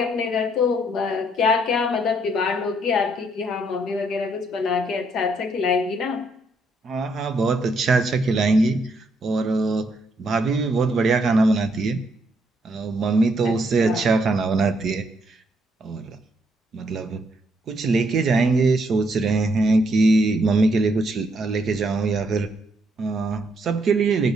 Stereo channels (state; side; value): normal; both; correlation 0.73